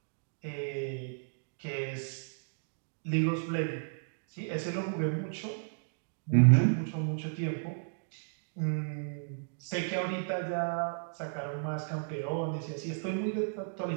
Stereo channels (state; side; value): silent; left; digital silence